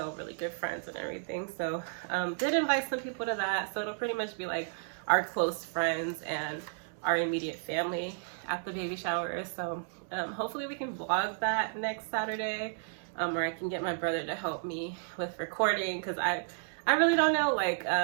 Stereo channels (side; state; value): left; silent; digital silence